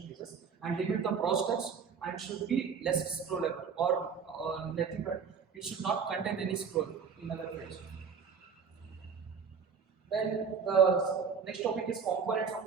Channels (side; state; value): left; quieter; 6.2 dB